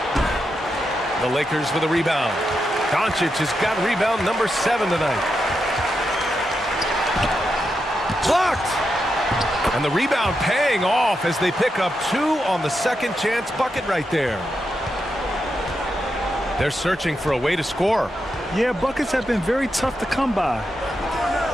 The Lakers with a rebound. Doncic has got rebound number 7 tonight. Blocked! And the rebound paying off as they pick up 2 on the second chance bucket right there. They're searching for a way to score. Yeah, buckets have been very tough to come by.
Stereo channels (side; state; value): both; normal; correlation 0.86